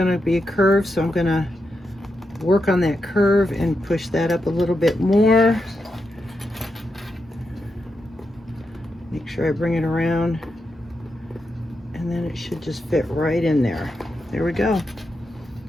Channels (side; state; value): both; normal; correlation 0.86